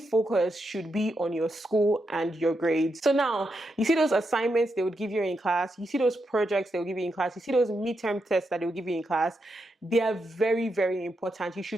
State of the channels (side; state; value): both; normal; correlation 0.84